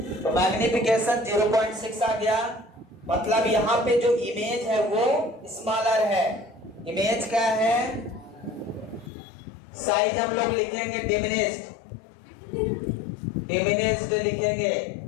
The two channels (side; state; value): right; drops out; at 9.1 s